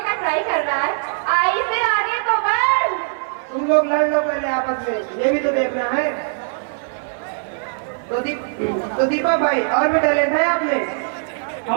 का ट्राई कर रहा है। आई से आगे तो बढ़। तुम लोग लड़ लो पहले आपस में, ये भी तो देखना है। तो दीपक भाई और भी टैलेंट है आप में?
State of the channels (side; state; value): left; silent; 59 dB below the other